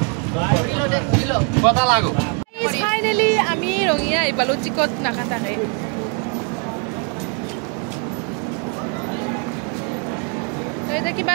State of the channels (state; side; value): quieter; left; 37.3 dB